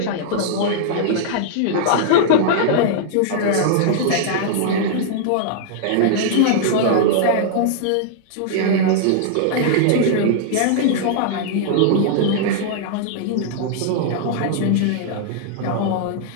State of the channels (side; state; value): both; different; correlation -0.01